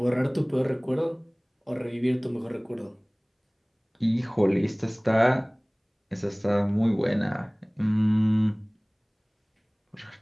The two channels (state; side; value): identical; both; correlation 1.00